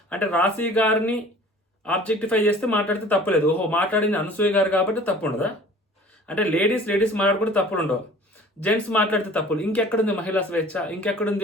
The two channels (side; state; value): both; normal; correlation 0.46